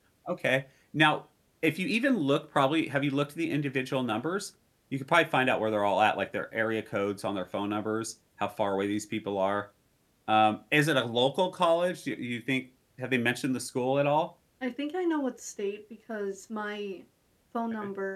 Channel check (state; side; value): identical; both; correlation 1.00